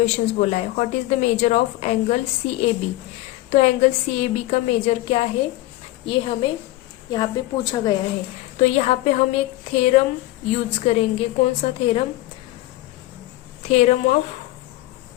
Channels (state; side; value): quieter; right; 17.3 dB